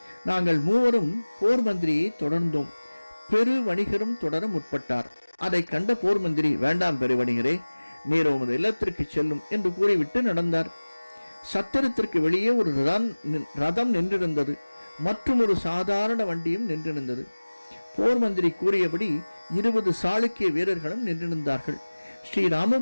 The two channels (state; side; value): inverted; both; correlation -1.00